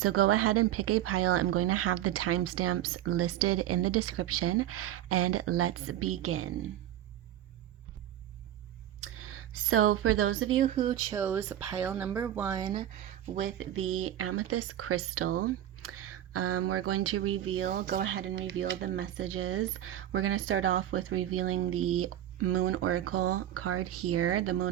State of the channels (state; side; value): quieter; left; 12.2 dB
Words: go ahead and pick a pile. I'm going to have the timestamps listed in the description, and let's begin. So for those of you who chose pile number 1 with the amethyst crystal, we're going to go ahead and reveal the messages. We're going to start off with revealing the Moon Oracle card here, the